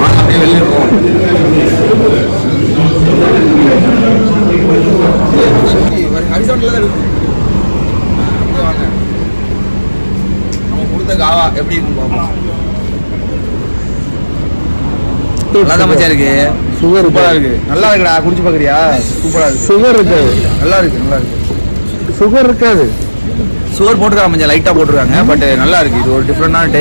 அப்படியே வெளியே இருக்கோம். ஹரிசாண்டில் தான் இருக்கு. வாங்க, நம்ம கொடுத்த காவா எப்படி இருக்குன்னு பார்ப்போம். நல்லா தான் மச்சான் இருக்கு. சுகர் சூப்பரா இருக்கு. நல்லா இருக்குடா. குடிச்சு பாக்குறியா? சூப்பரா இருக்கு. சுகர் இருக்காது. நல்லா இருக்கு, நல்லா இருக்கு. சுகர் இருக்காது. சுகர் போட்டுருக்காங்க, கொஞ்சம் லைட்டா போட்டுருக்காங்க. பட் நல்லா இருக்கு. இது ஒரு டிஃப்ரெண்டான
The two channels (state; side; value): inverted; both; correlation -1.00